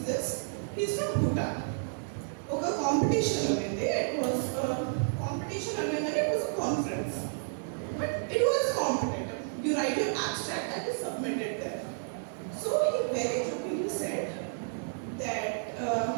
is from Bhutan. ఒక కాంపిటీషన్ ఉంది. It was competition అనగానే it was conference, but it was competitive. You right your abstract and you submit it there. So he very jokingly said that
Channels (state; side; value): silent; left; digital silence